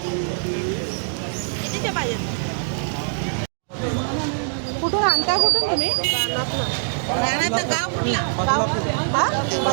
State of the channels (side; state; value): left; silent; digital silence